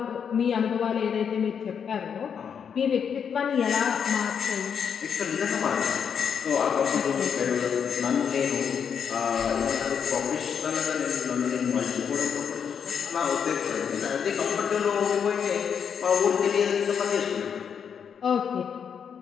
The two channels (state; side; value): quieter; right; 7.3 dB